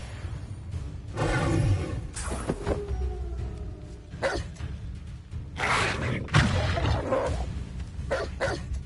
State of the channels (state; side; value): identical; both; correlation 1.00